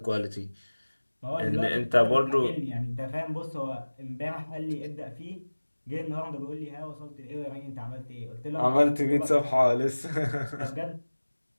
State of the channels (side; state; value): both; inverted; correlation -1.00